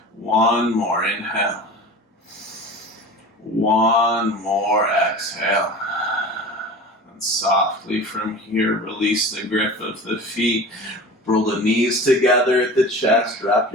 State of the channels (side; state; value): both; normal; correlation 0.36